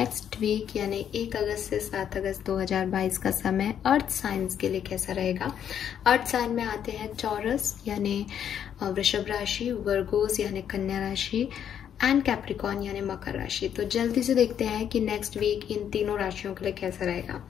वीक यानी 1 अगस्त से 7 अगस्त 2022 का समय अर्थ साइंस के लिए कैसा रहेगा। अर्थ साइन में आते हैं चौरस यानी वृषभ राशि, वर्गोस यानी कन्या राशि एंड कैप्रिकॉर्न यानी मकर राशि। तो जल्दी से देखते हैं कि नेक्स्ट वीक इन तीनों राशियों के लिए कैसा रहेगा।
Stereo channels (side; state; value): right; quieter; 9.1 dB